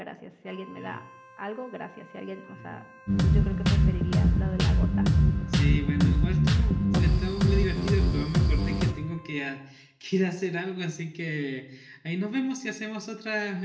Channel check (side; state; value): both; identical; correlation 1.00